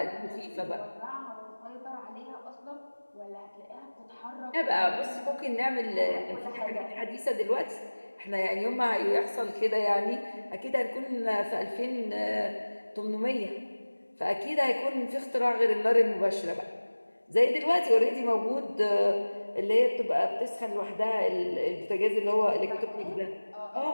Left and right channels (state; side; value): inverted; both; correlation -1.00